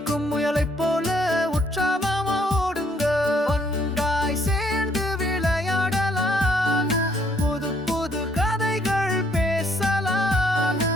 முயலைப் போல உற்சாகமா ஓடுங்க. ஒன்றாய் சேர்ந்து விளையாடலாம், புது புது கதைகள் பேசலாம்,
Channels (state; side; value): normal; both; correlation 0.67